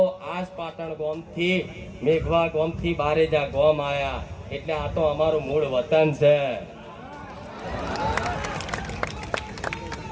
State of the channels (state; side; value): identical; both; correlation 1.00